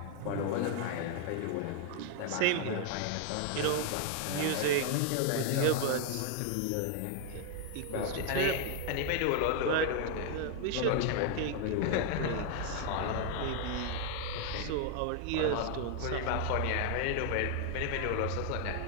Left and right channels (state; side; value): different; both; correlation 0.00